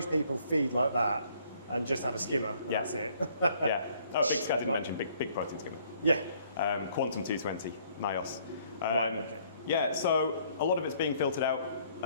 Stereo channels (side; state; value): both; inverted; correlation -0.63